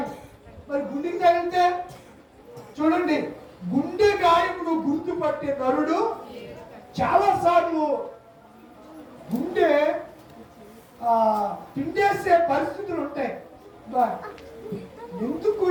మరి గుండెకి తగిలితే చూడండి, గుండె గాయమును గుర్తుపట్టే నరుడు చాలా సార్లు గుండె పిండేసే పరిస్థితులు ఉంటాయి. ఎందుకు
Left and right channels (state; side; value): identical; both; correlation 1.00